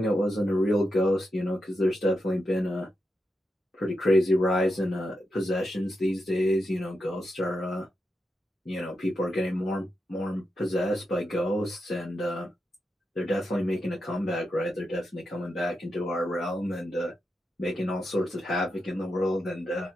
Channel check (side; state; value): both; normal; correlation 0.87